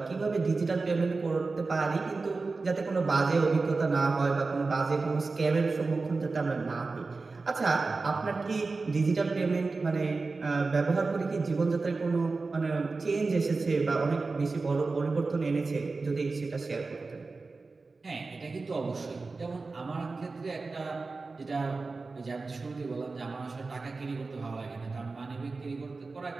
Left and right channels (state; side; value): quieter; left; 3.9 dB